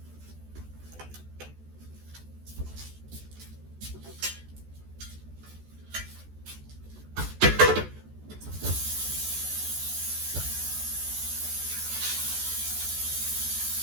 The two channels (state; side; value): late; left; 14 ms